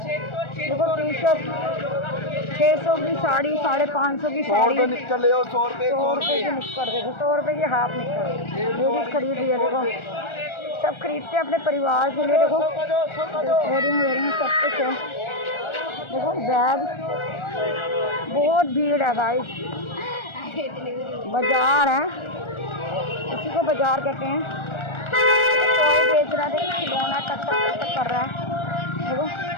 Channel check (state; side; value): late; right; 1.4 ms